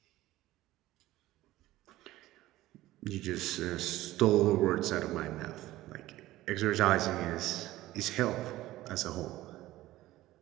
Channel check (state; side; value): quieter; left; 16.2 dB